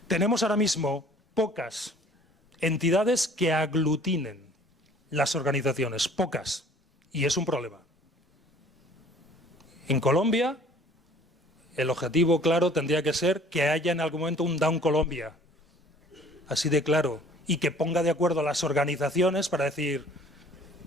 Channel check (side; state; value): both; normal; correlation 0.53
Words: Tenemos ahora mismo pocas entidades que aglutinen las organizaciones, pocas, y es un problema. En Colombia, el objetivo claro tendría que ser que haya en algún momento un Down Colombia, así de claro, y que ponga de acuerdo a las organizaciones para decir,